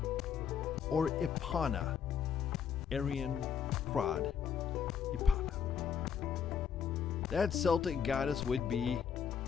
or Ipana? Arian Prod. Ipana. That Celtic goddess would be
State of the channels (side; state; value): right; quieter; 7.6 dB